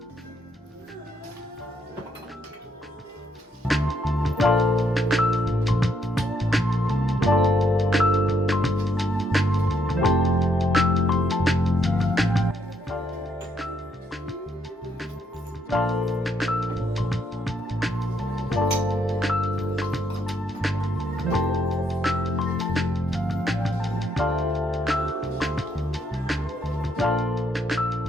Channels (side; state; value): both; normal; correlation 0.74